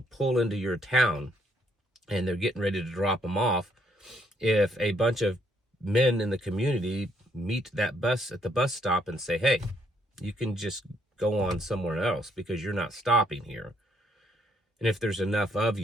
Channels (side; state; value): both; normal; correlation 0.71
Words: pull into your town and they're getting ready to drop them off, if a bunch of men in the community meet that bus at the bus stop and say, hey, you can just go on somewhere else because you're not stopping here. And if there's enough of